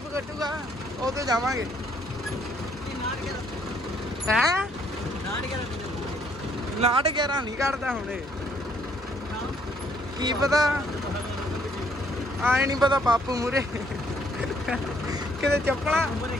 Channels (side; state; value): both; normal; correlation 0.67